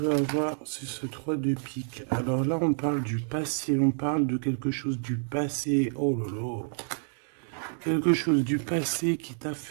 avoir sur ce 3 de pique? Alors là, on parle du passé, on parle de quelque chose du passé. Oh là là! Quelque chose du passé qui t'a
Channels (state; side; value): silent; left; 59 dB below the other